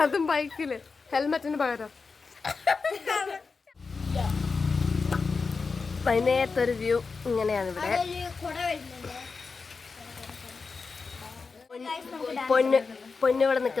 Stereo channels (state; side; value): quieter; right; 4.6 dB